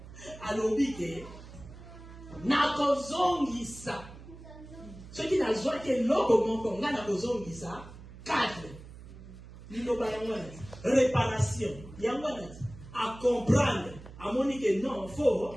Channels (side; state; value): right; noise; hum, 16 dB below the sound